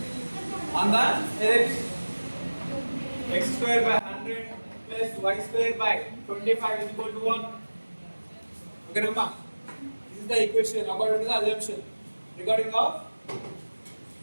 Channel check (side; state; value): both; inverted; correlation -1.00